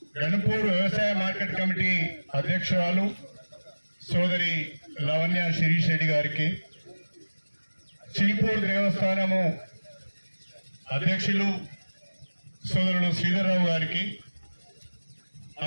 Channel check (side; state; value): both; inverted; correlation -1.00